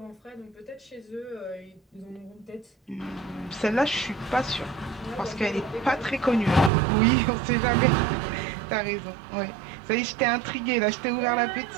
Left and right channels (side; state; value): left; drops out; at 6.7 s